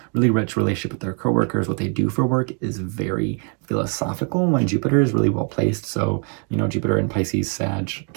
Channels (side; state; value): left; quieter; 37.5 dB